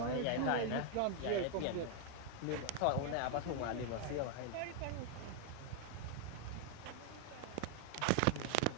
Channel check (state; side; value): different; both; correlation 0.00